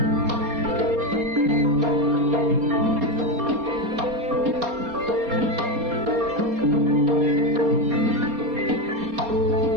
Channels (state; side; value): late; left; 4.2 ms